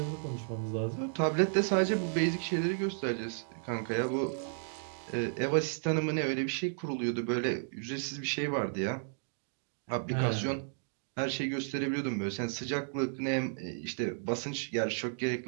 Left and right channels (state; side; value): silent; left; digital silence